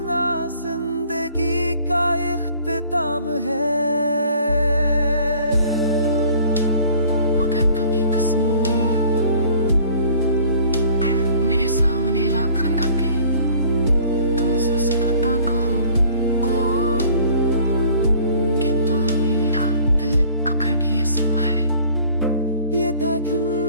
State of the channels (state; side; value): inverted; both; correlation -0.52